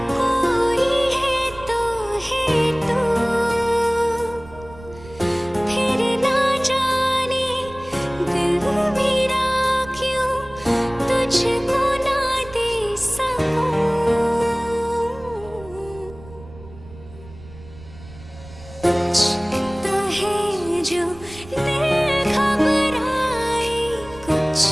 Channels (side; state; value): right; noise; rumble, 19 dB below the sound